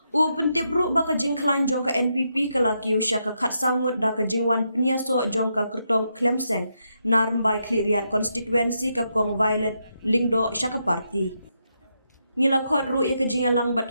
U pentip ru ba ka jingklan jong ka NPP kelaki usya ka khat sangut da ka jingwan peniaso jong ka kertong Klemseng narmbai kliriat konstituensi ka kong Violet Lingdo syaka parti. Ngila khot ru ya kejingalang bat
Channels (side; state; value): both; inverted; correlation -0.82